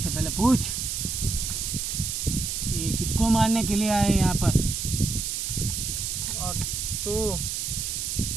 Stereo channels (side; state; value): right; noise; hiss, 2 dB below the sound